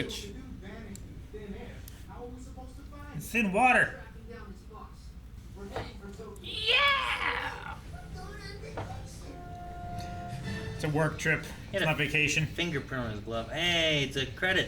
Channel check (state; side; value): identical; both; correlation 1.00